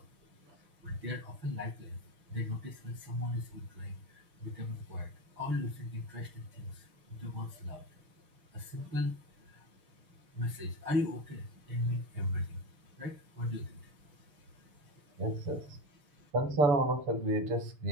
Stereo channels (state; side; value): late; left; 6.7 ms